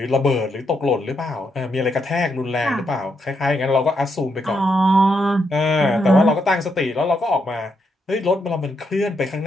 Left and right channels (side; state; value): both; normal; correlation 0.79